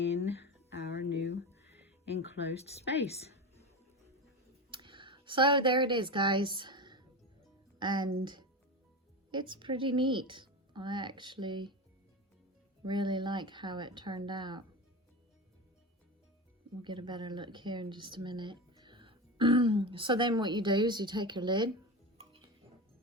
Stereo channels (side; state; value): both; normal; correlation 0.23